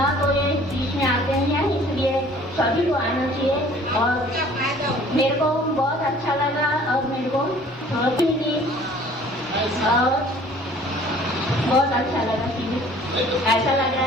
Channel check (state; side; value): normal; both; correlation 0.52